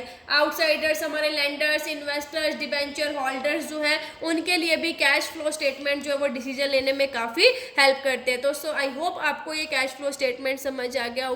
आउटसाइडर्स, हमारे लेंडर्स, इन्वेस्टर्स, डिबेंचर होल्डर्स जो है उनके लिए भी कैश फ्लो स्टेटमेंट जो है वो डिसीजन लेने में काफ़ी हेल्प करते हैं। तो सो आई होप आपको ये कैश फ्लो स्टेटमेंट समझ आ गया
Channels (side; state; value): both; identical; correlation 1.00